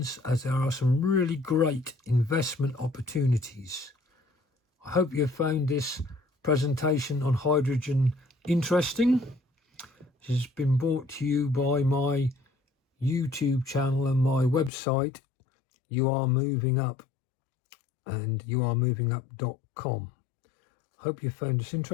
as there are some really great investment opportunities. I hope you found this presentation on hydrogen interesting. This has been brought to you by my YouTube channel and my website, You Are Moving Up, and youaremovingup.com. Hope you found this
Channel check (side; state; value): right; drops out; at 14.7 s